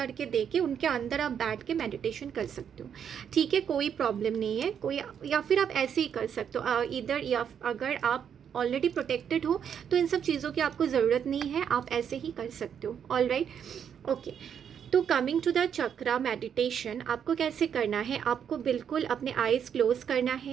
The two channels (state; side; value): quieter; left; 8.1 dB